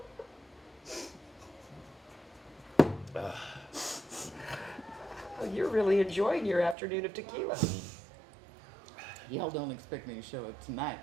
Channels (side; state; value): left; drops out; at 6.8 s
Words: Oh, you're really enjoying your afternoon of tequila. Y'all don't expect me to show up tonight,